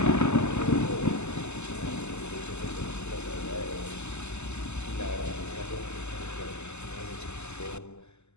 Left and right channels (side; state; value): right; late; 0.82 ms